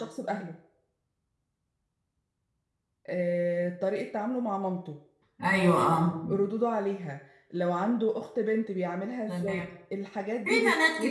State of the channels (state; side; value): identical; both; correlation 1.00